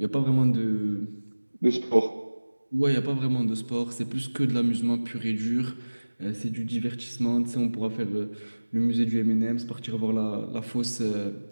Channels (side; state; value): both; inverted; correlation -1.00